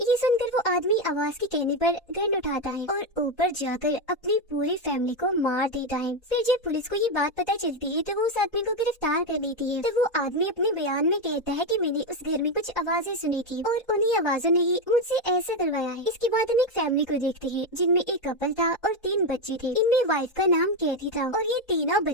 ये सुनकर वो आदमी आवाज के कहने पर गन उठाता है और ऊपर जाकर अपनी पूरी फैमिली को मार देता है। फिर जब पुलिस को ये बात पता चलती है तो वो उस आदमी को गिरफ्तार कर लेती है। तो वो आदमी अपने बयान में कहता है कि मैंने उस घर में कुछ आवाजें सुनी थी और उन्हीं आवाजों ने ही मुझसे ऐसा करवाया है। इसके बाद हम एक फैमिली को देखते हैं जिनमें एक कपल था और 3 बच्चे थे। इनमें वाइफ का नाम कैथी था और ये तीनों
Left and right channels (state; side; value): late; right; 1.8 ms